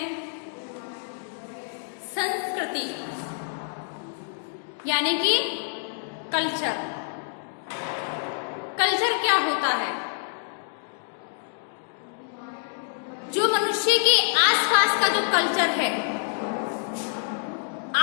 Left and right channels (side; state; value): right; silent; digital silence